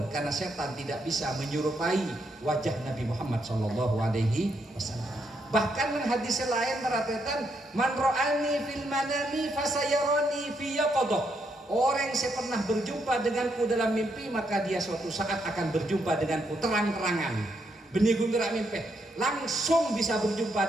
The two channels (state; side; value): normal; both; correlation 0.77